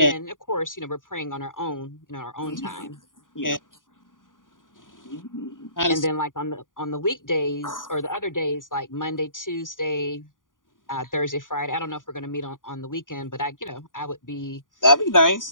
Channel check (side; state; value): right; late; 0.89 ms